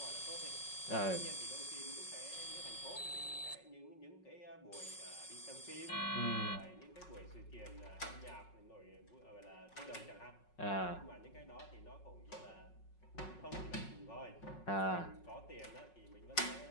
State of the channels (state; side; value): late; right; 5.5 ms